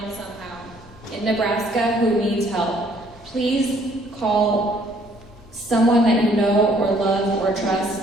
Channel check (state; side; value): normal; both; correlation 0.63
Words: somehow in Nebraska who needs help. Please call someone that you know or love or